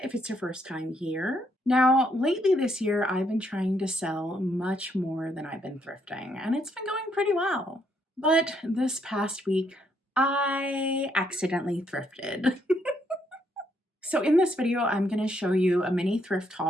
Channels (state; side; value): normal; both; correlation 0.73